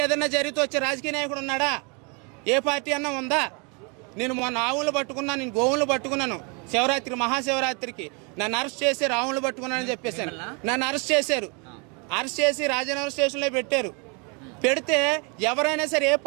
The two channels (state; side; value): quieter; left; 33.0 dB